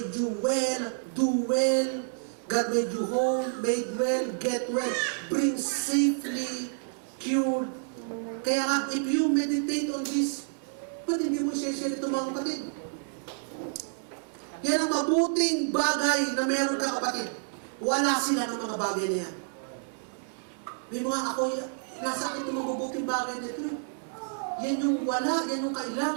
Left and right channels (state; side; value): silent; left; digital silence